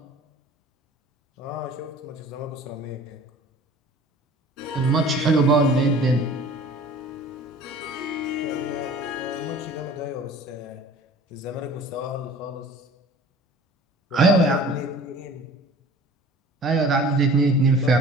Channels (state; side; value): normal; both; correlation 0.45